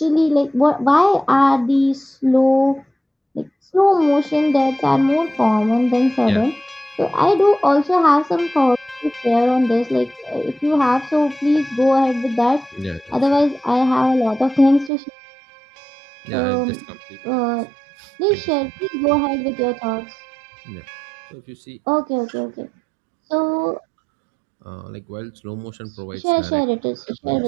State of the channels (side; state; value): left; drops out; at 14.9 s